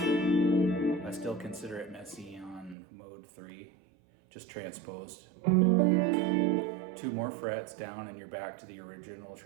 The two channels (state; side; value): drops out; left; at 2.8 s